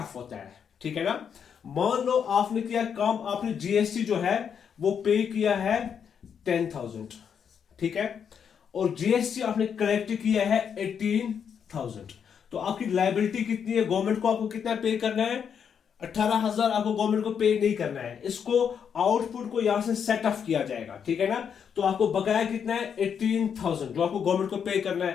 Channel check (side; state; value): right; quieter; 7.5 dB